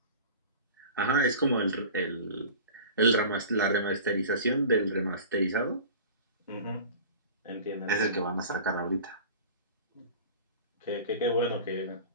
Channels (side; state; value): both; inverted; correlation -0.39